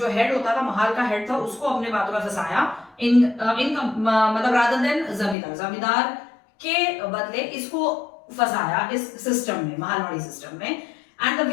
हेड होता था, महाल का हेड था, उसको अपने बातों में फंसाया, मतलब रादर देन जमींदार के बदले इसको फंसाया इस सिस्टम में, महालवाड़ी सिस्टम में। And the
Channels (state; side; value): drops out; right; at 5.4 s